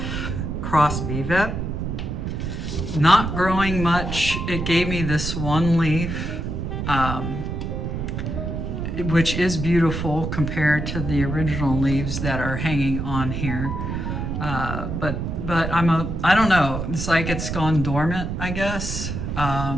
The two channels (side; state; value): right; noise; rumble, 3 dB below the sound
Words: cross Vivet. Not growing much. It gave me this one leaf, which is beautiful compared to the original leaves that are hanging on here. But I don't know. It's like it's gone dormant, I guess,